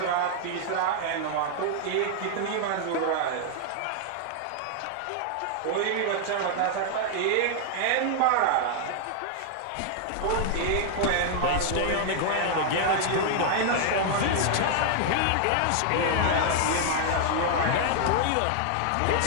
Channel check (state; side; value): different; both; correlation 0.00